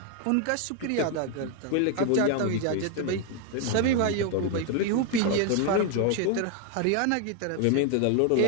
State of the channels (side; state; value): both; different; correlation 0.01